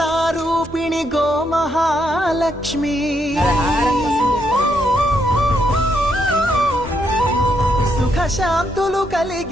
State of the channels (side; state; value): both; normal; correlation 0.77